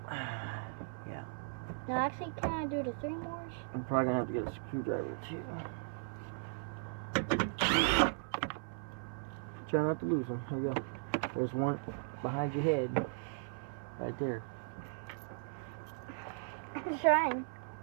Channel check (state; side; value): silent; left; 53 dB below the other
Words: Yeah. No, actually, can I do the 3 mores? I'm probably gonna have to get a screwdriver too. Try not to lose them. Here you go. There's one behind your head. Right there. I'm trying.